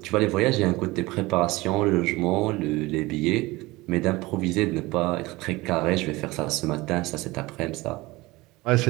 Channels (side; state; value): left; quieter; 21.1 dB